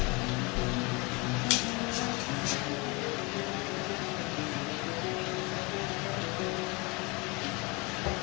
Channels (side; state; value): right; quieter; 27.5 dB